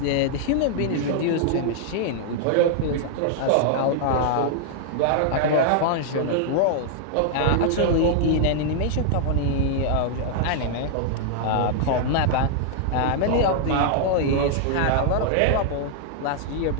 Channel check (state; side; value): different; both; correlation -0.01